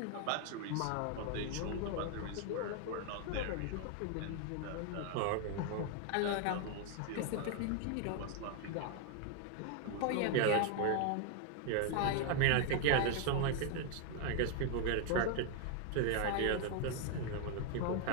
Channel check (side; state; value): both; different; correlation 0.00